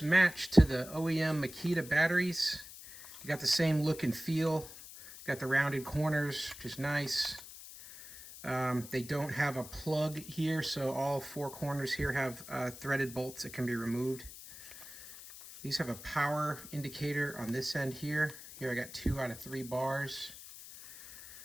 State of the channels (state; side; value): noise; left; hiss, 15 dB below the sound